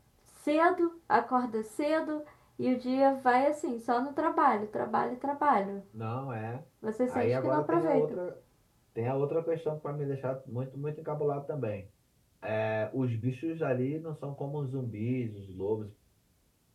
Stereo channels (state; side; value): identical; both; correlation 1.00